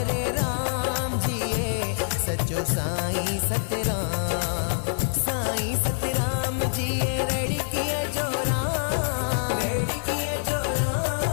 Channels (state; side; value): silent; right; digital silence